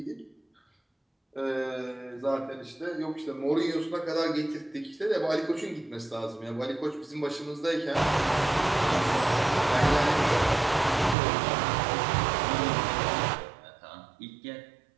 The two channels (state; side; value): drops out; left; at 11.2 s